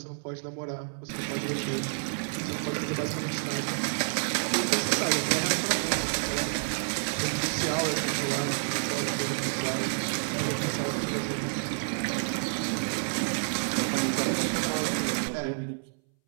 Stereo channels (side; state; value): left; silent; 58 dB below the other